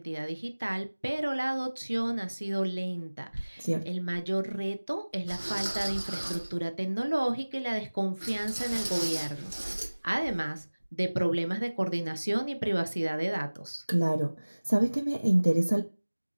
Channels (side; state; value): both; inverted; correlation -1.00